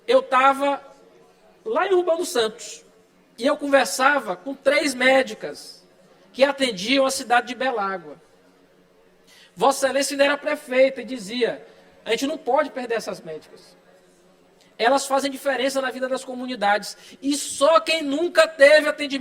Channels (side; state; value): both; identical; correlation 1.00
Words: eu estava lá em Urbano Santos e eu conversava com 3 médicas que atendiam a cidade de Belágua. Vossa Excelência ainda era prefeita e dizia, a gente não pode perder essas médicas. Elas fazem diferença na vida das comunidades. E só quem nunca teve